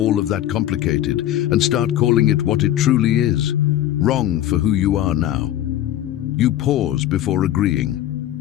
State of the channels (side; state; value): right; quieter; 12.6 dB